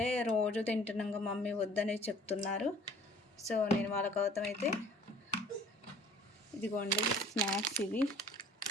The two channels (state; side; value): normal; both; correlation 0.51